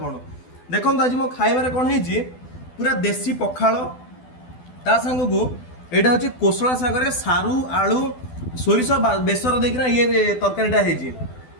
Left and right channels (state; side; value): late; right; 12 ms